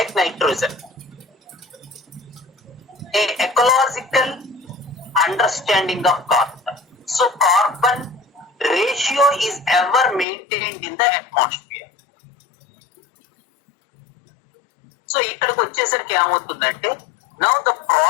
nitrogen. A ecological understanding of carbon. So carbon ratio is ever maintained in the atmosphere. So ఇక్కడికి వచ్చేసరికి ఏమవుతుందంటే, now the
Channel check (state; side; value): drops out; right; at 10.2 s